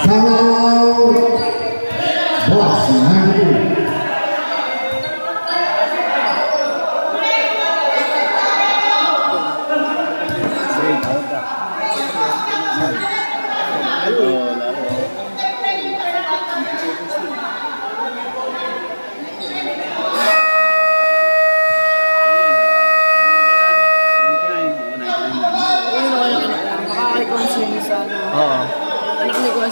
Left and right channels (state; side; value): inverted; both; correlation -1.00